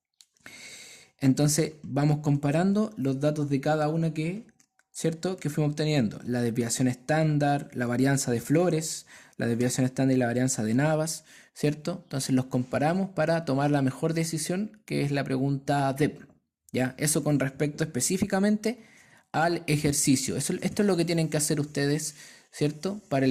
Entonces vamos comparando los datos de cada una ¿cierto? Que fuimos obteniendo. La desviación estándar, la varianza de flores, la desviación estándar y la varianza de Navas, ¿cierto? Entonces los comparamos para tomar la mejor decisión, que es la pregunta DEP, ¿ya? Eso con respecto específicamente al ejercicio. Esto es lo que tienen que hacer ustedes, ¿cierto? Para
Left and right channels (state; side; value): identical; both; correlation 1.00